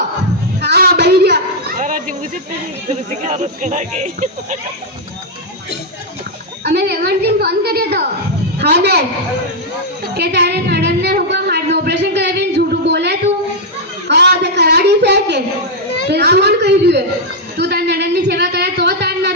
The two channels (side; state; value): both; normal; correlation -0.02